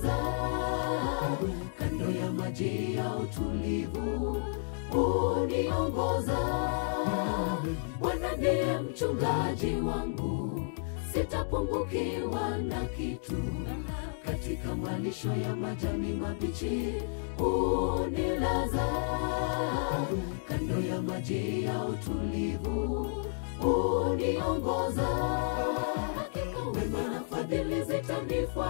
kando ya maji ya utulivu uniongoza. Bwana ndiye mchungaji wangu, sitapungukiwa na kitu. Katika malisho ya majani mabichi unilaza, kando ya maji ya utulivu uniongoza. Hakika wema na fadhili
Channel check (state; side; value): silent; right; digital silence